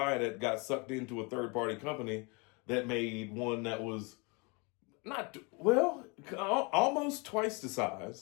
that got sucked into a third-party company that made one that was almost twice the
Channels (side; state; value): right; quieter; 30.2 dB